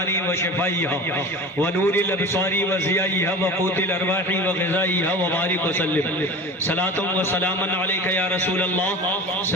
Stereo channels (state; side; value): normal; both; correlation 0.34